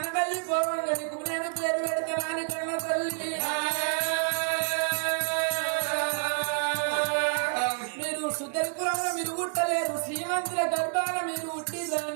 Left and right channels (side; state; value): left; silent; 59 dB below the other